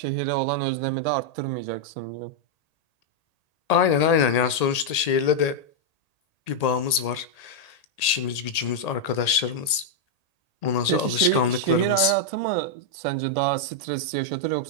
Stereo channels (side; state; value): right; late; 1.8 ms